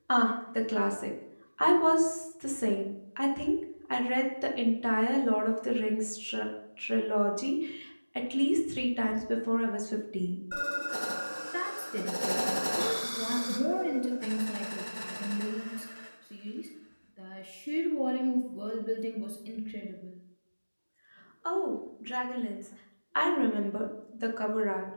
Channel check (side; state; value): both; inverted; correlation -1.00